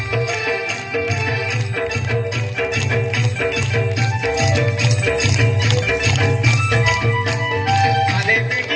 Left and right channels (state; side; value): identical; both; correlation 1.00